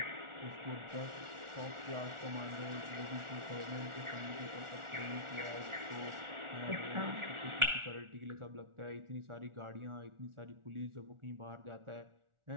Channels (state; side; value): late; left; 1.4 ms